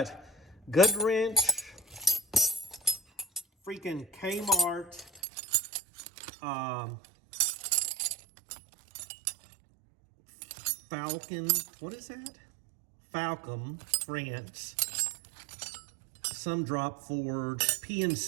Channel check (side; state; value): left; drops out; at 5.2 s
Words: Good Wrench, freaking Kmart, Falcon, what is that? Falcom, France, some Drop Forge,